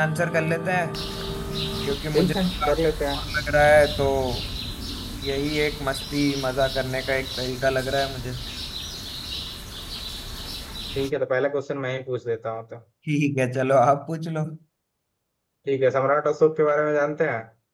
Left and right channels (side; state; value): both; identical; correlation 1.00